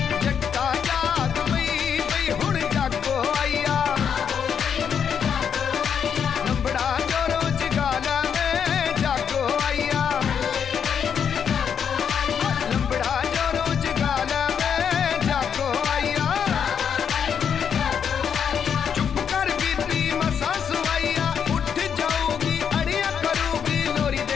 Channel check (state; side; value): quieter; right; 7.6 dB